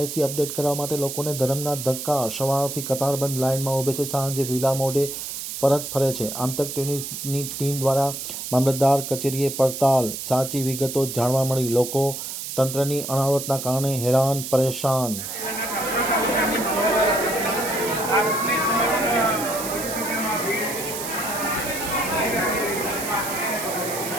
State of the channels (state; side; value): noise; right; hiss, 7 dB below the sound